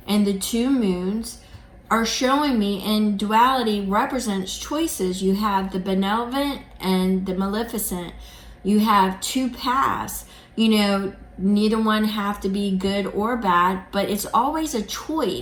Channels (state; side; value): identical; both; correlation 1.00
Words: and the 2 moons are showing me, and duality represents choices. You have the benevolent and the maleficent. You have 2 paths. Neither one have to be good or bad, but it's always a